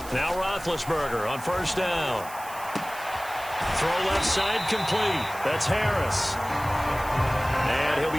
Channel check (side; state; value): right; noise; hiss, 16 dB below the sound